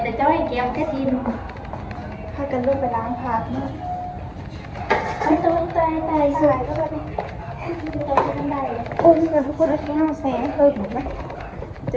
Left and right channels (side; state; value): both; identical; correlation 1.00